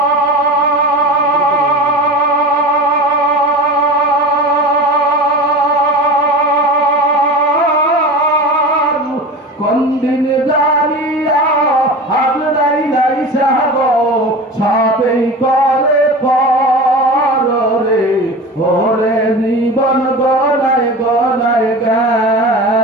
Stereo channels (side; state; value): both; normal; correlation 0.31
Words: কোন দিন জানিয়া হাজরাই নাই সাগো সবেই করে পরে ওরে জীবন গনায় গনায়